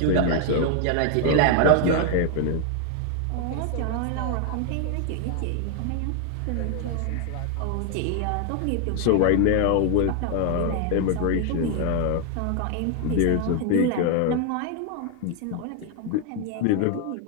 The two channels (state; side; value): different; both; correlation 0.00